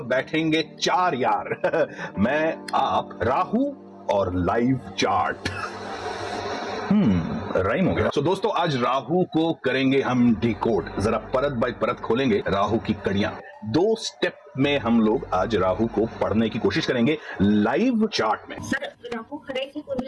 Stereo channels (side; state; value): both; identical; correlation 1.00